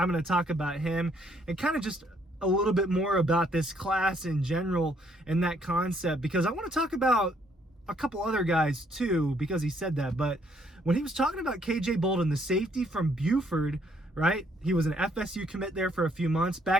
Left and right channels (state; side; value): normal; both; correlation 0.68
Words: going to talk about him and kind of just a little bit more about this class in general and that concept, because I want to talk about a couple other guys too, because he said that. But when he was talking about KJ Bolden, the safety from Buford, right? He was an FSU commit there for a few months.